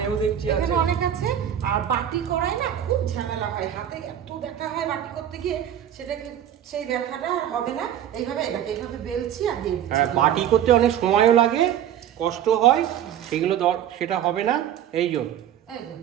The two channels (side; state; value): left; quieter; 10.5 dB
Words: দেখছি আছে। এখানে অনেক আছে। আর বাটি করাই না খুব ঝামেলা হয়, হাতে এত ব্যথা হয় বাটি করতে গিয়ে, সেটাকে সেই ব্যথাটা আর হবে না। এইভাবে এটাকে এইভাবে বেলছি আর দিয়ে দিচ্ছি। হ্যাঁ, বাটি করতে অনেক সময়ও লাগে, কষ্ট হয়, সেগুলো সেটা হবে না। এই জন্য